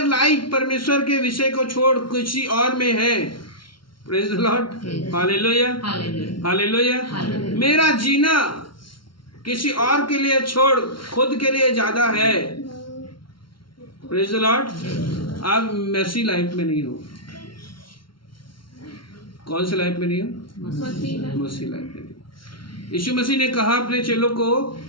लाइफ परमेश्वर के विषय को छोड़ किसी और में है, praise the lord, hallelujah, hallelujah. मेरा जीना किसी और के लिए छोड़ खुद के लिए ज्यादा है, प्रेज द लॉर्ड। आप मैसी लाइफ में नहीं हो। कौन सी लाइफ में नहीं हो? मसीह लाइफ में नहीं। यीशु मसीह ने कहा अपने चेलों को,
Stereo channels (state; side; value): late; right; 0.73 ms